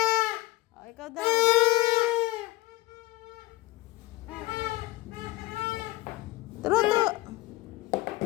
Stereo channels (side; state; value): right; quieter; 19.1 dB